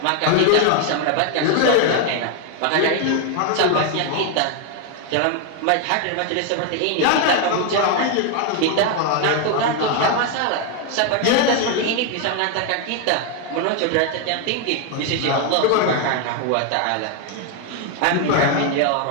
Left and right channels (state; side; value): different; both; correlation 0.01